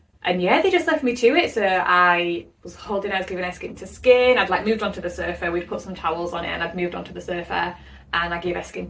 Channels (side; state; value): both; identical; correlation 1.00